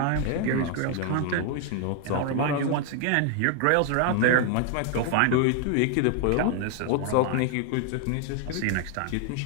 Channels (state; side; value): different; both; correlation 0.00